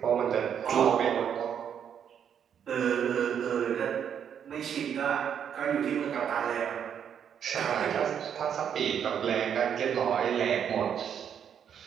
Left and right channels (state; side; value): quieter; left; 8.4 dB